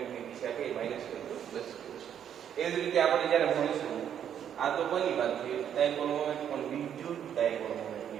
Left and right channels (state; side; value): quieter; left; 9.2 dB